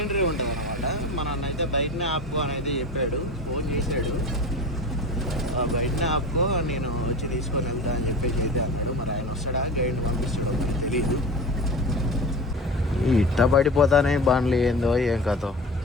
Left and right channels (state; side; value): normal; both; correlation 0.32